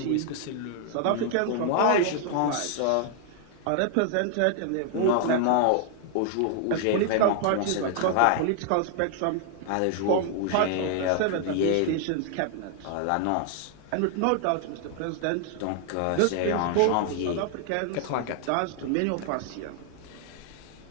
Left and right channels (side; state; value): both; different; correlation 0.00